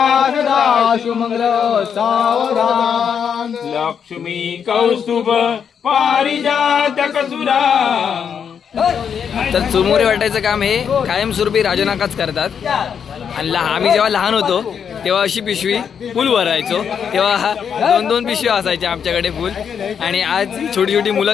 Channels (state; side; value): quieter; right; 7.4 dB